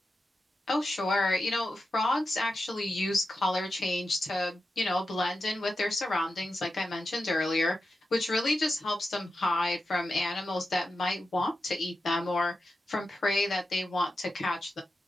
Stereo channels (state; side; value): normal; both; correlation 0.90